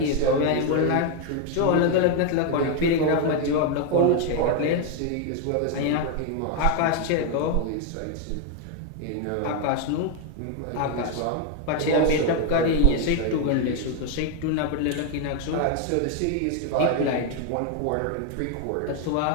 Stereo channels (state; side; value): different; both; correlation 0.01